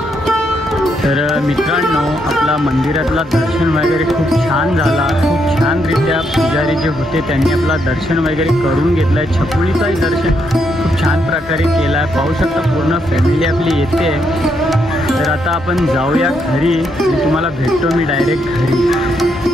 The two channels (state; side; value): normal; both; correlation 0.77